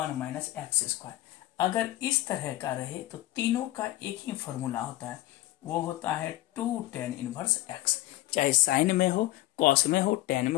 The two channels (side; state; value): right; quieter; 16.4 dB